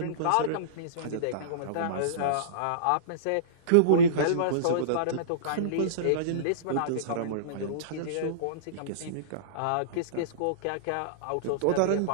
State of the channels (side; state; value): both; different; correlation -0.04